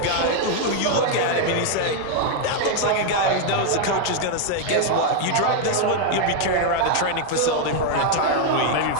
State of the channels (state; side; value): different; both; correlation 0.00